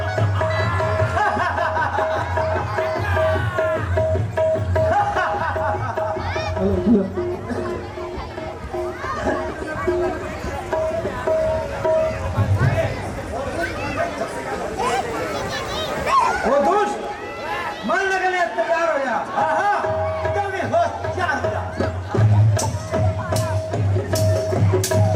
वो दुष्ट मरने के लिए तैयार हो जा। एकदम ही होशियार हो जा।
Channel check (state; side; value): identical; both; correlation 1.00